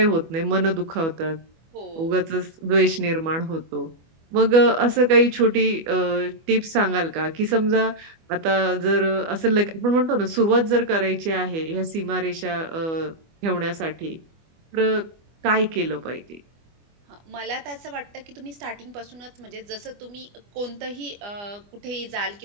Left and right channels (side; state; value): left; late; 25 ms